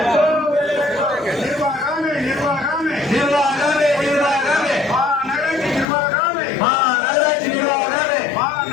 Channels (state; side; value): drops out; right; at 5.9 s